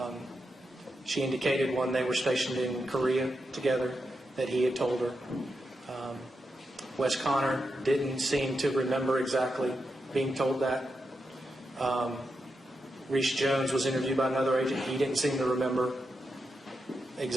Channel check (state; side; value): normal; both; correlation 0.86